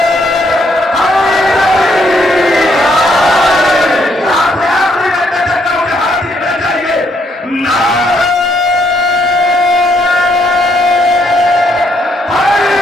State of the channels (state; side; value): normal; both; correlation 0.72